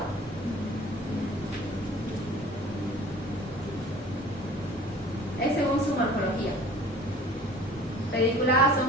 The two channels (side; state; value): both; normal; correlation 0.46